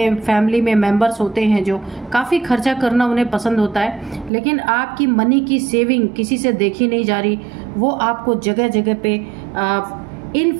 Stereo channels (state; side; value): drops out; left; at 4.3 s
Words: फैमिली में मेंबर्स होते हैं जो काफ़ी खर्चा करना उन्हें पसंद होता है, लेकिन आपकी मनी की सेविंग किसी से देखी नहीं जा रही। वो आपको जगह जगह पे